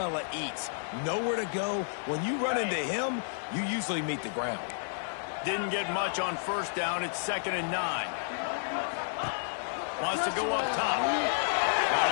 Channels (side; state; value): right; silent; 57 dB below the other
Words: eats. Nowhere to go. When you run into him, you usually meet the ground. Didn't get much on first down. It's 2nd and 9. Wants to go up top. Got